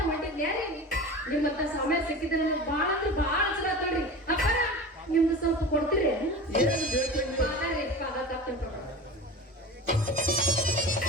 ಹೊಂಟಿದ್ಯಾರಿ. ನಿಮ್ಮತ್ತ ಸಮಯ ಸಿಕ್ಕಿದ್ರೆ ನನಗೆ ಬಾಳ ಅಂದ್ರೆ ಬಾಳ ಚಲೋ ಆತೋಡ್ರಿ. ಅಪ್ಪರ ನಿಮ್ದು ಸ್ವಲ್ಪ ಕೊಡ್ತೀರಿ? ಏನ್ ಬೇಕು ಪಾದ ರೀ, ಪಾದ ತಪ್ಪ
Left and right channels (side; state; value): both; normal; correlation 0.32